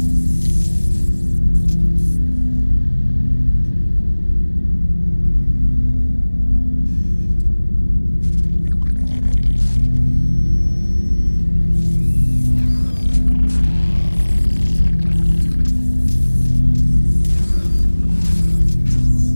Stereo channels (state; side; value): inverted; both; correlation -1.00